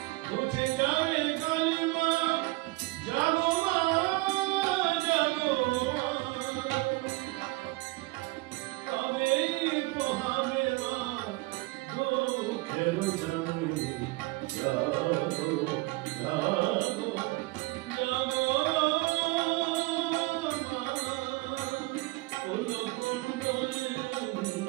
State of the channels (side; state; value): left; quieter; 22.4 dB